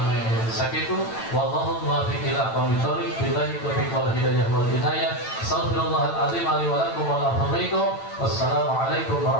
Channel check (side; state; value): right; late; 8.9 ms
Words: Sakitu wallahu muwaffiq ila aqwamit thoriq billahi taufiq wal hidayah wal inayah. Astaghfirullahal azim li wa lakum wa la ilaha illa huwa. Wassalamu alaikum